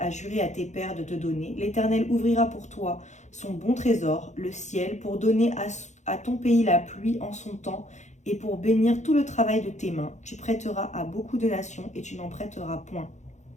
juré à tes pères de te donner, l'Éternel ouvrira pour toi son bon trésor, le ciel, pour donner à ton pays la pluie en son temps et pour bénir tout le travail de tes mains. Tu prêteras à beaucoup de nations et tu n'en prêteras point.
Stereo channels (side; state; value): right; late; 0.34 ms